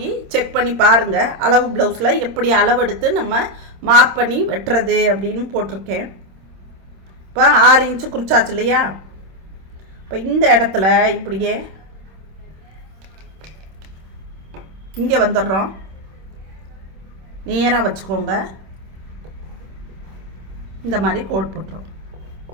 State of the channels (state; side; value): late; left; 26 ms